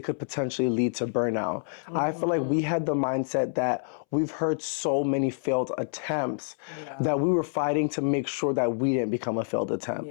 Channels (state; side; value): silent; right; 60 dB below the other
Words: could potentially lead to burnout. I feel like we had the mindset that we've heard so many failed attempts Yeah. that we were fighting to make sure that we didn't become a failed attempt.